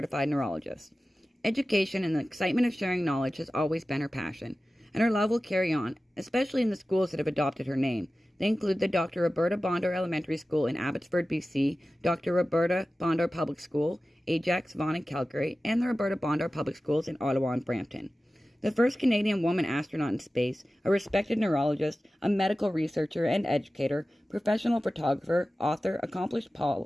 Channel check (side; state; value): both; normal; correlation 0.95